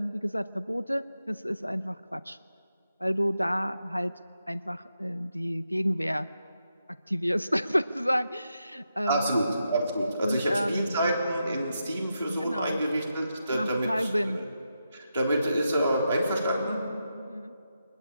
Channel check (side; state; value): both; inverted; correlation -0.86